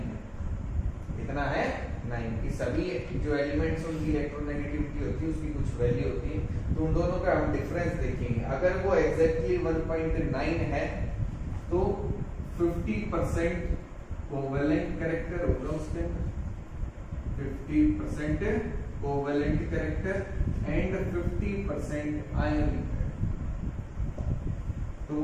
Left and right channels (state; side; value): identical; both; correlation 1.00